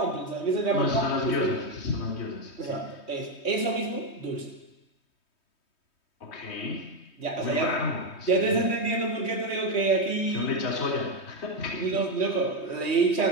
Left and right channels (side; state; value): right; late; 3.2 ms